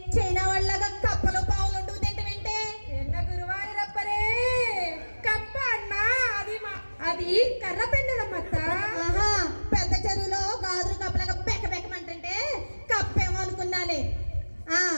చైనా వాళ్ళగా కప్పలు పావులు ఉంటూ తింటామంటే ఎన్న గురువారి రప్పరే కప్ప అన్నా అది కర్ర పెండలం అత్త. ఆహా పెద్ద చెరువులో గాజులు కప్పలాగా బెక్కమంటుంటే కప్పేమో అనుకున్నాలే.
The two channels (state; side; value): inverted; both; correlation -1.00